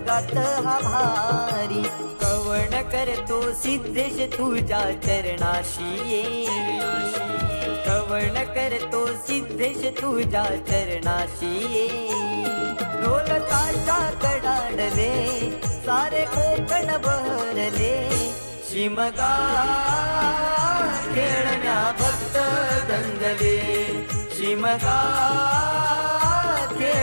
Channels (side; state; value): both; inverted; correlation -1.00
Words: हा भारी. कवण करतो सिद्धेश तुझ्या चरणाशी ये, कवण करतो सिद्धेश तुझ्या चरणाशी ये. ढोल ताशा कडाडले सारे कोकण बहरले, शिमगा खेळण्या भक्त दंगले, शिमगा